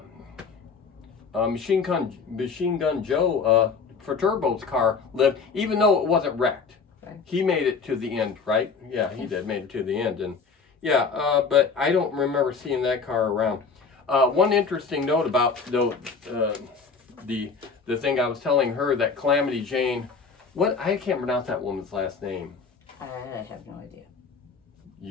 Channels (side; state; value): right; quieter; 5.1 dB